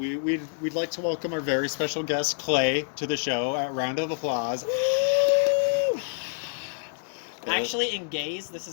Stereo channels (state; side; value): silent; right; digital silence